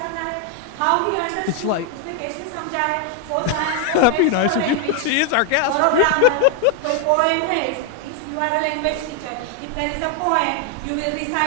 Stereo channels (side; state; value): both; different; correlation 0.01